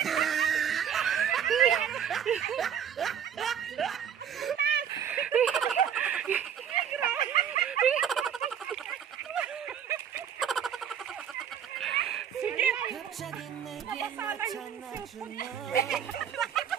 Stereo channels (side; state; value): left; quieter; 8.7 dB